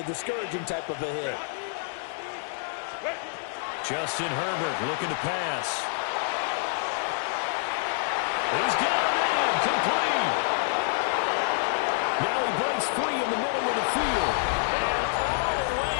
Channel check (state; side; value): silent; right; digital silence